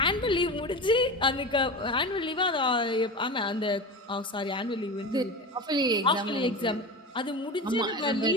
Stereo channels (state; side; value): normal; both; correlation 0.27